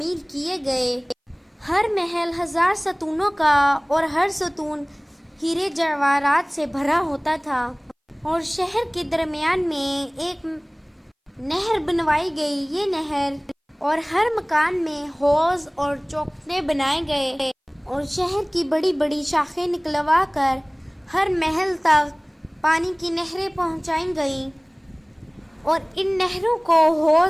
کیے گئے۔ ہر محل 1000 ستونوں کا اور ہر ستون ہیرے جواہرات سے بھرا ہوتا تھا، اور شہر کے درمیان میں ایک نہر بنوائی گئی۔ یہ نہر اور ہر مکان میں حوض اور چوکھٹے بنائے گئے، اور شہر کی بڑی بڑی شاخیں نکلوا کر ہر محل تک پانی کی نہریں پہنچائی گئیں، اور ان نہروں کو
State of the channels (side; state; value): both; identical; correlation 1.00